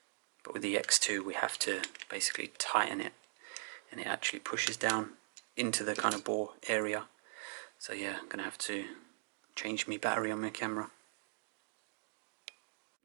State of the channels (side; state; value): left; silent; digital silence